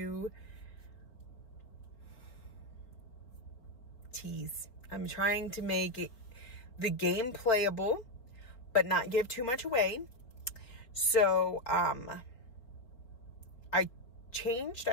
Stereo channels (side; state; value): right; late; 4.5 ms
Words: tease. I'm trying to make the game playable, but not give too much away. So, I changed.